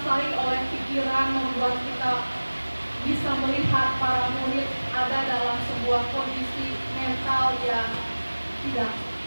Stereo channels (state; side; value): inverted; both; correlation -1.00